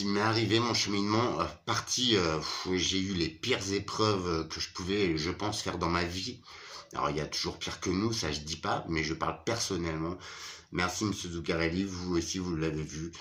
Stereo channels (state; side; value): identical; both; correlation 1.00